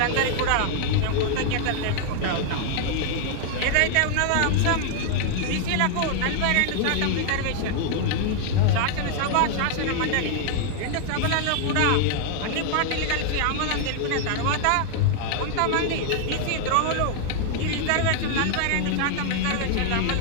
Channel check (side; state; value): both; different; correlation 0.00